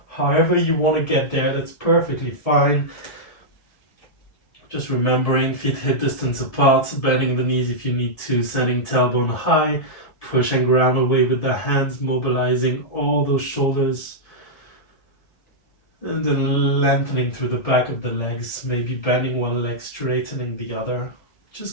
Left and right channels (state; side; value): late; right; 1.7 ms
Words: However you want to get there, that's perfectly fine. Just remembering feet hip distance apart, bending the knees if you need to, sending tailbone high, push and ground away with the hands, mobilizing all those shoulders. And then lengthening through the back of the legs, maybe bending one leg, straightening the other.